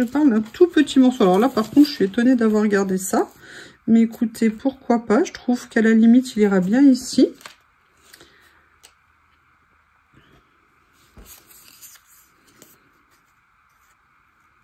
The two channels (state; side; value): identical; both; correlation 1.00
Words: parle d'un tout petit morceau. Alors là, par contre, je suis étonnée d'avoir gardé ça. Mais écoutez, pourquoi pas? Je trouve qu'à la limite, il ira bien ici.